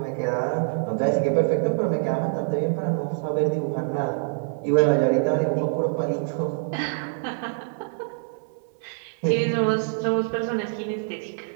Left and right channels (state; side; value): silent; left; 62 dB below the other